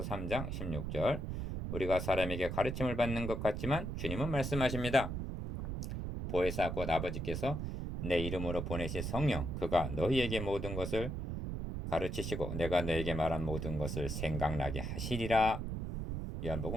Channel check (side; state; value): right; noise; rumble, 4 dB below the sound